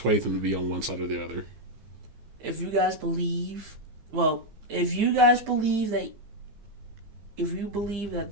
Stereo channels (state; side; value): late; left; 15 ms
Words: them to be on one side or the other? If you guys believe that